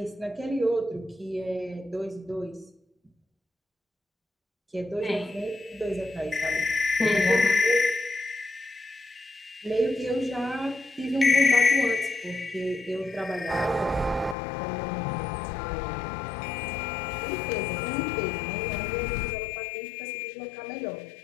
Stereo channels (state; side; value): drops out; right; at 14.4 s